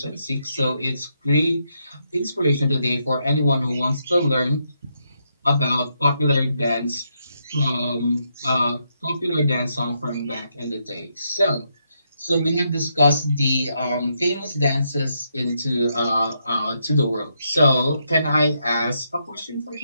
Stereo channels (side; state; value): both; inverted; correlation -0.79